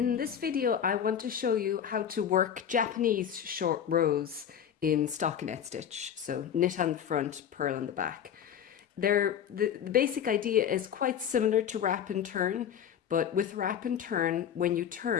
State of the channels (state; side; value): quieter; right; 8.9 dB